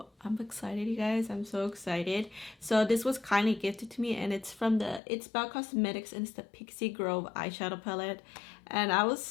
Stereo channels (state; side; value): drops out; right; at 5.0 s